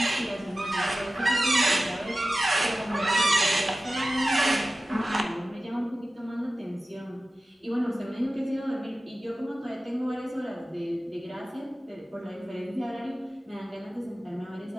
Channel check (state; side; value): normal; both; correlation 0.95